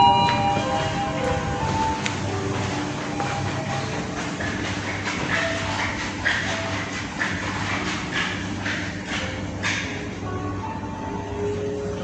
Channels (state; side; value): identical; both; correlation 1.00